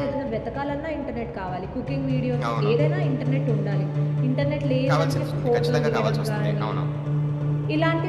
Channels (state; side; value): identical; both; correlation 1.00